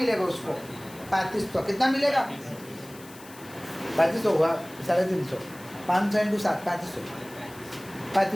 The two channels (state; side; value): noise; left; hiss, 20 dB below the sound